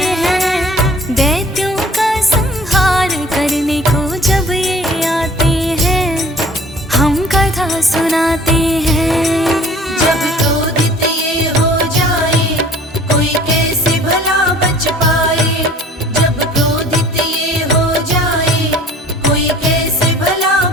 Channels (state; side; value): normal; both; correlation 0.51